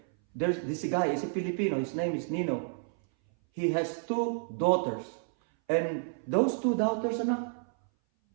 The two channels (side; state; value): left; silent; 58 dB below the other